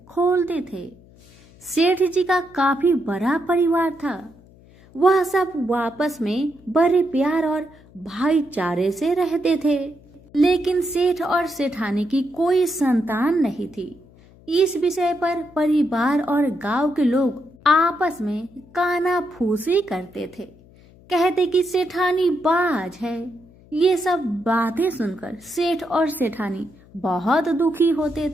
खोलते थे। सेठ जी का काफी बड़ा परिवार था। वह सब आपस में बड़े प्यार और भाईचारे से रहते थे। लेकिन सेठ और सेठानी की कोई संतान नहीं थी। इस विषय पर परिवार और गांव के लोग आपस में कानाफूसी करते थे। कहते कि सेठानी बाज है। ये सब बातें सुनकर सेठ और सेठानी बहुत दुखी होते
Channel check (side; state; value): left; noise; hum, 26 dB below the sound